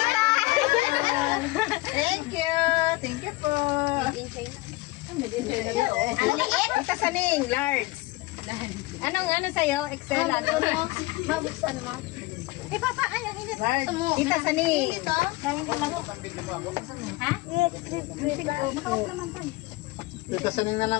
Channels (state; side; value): quieter; right; 20.9 dB